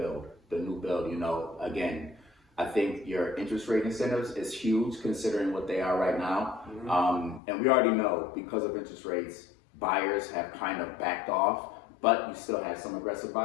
Again, I think your interest rate incentives is huge considering what they are right now. And we already know because of interest rates, buyers have kind of backed off, but you still have some aggressive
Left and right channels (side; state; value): right; drops out; at 7.4 s